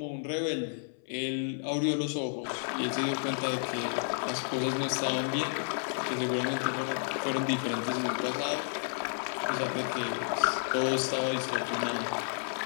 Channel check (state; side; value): silent; right; 57 dB below the other